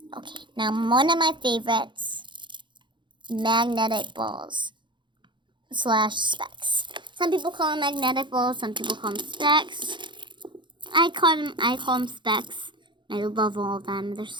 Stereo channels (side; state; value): left; late; 0.23 ms